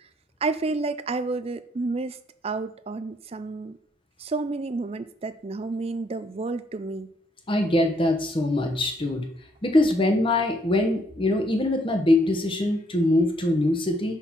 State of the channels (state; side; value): normal; both; correlation 0.69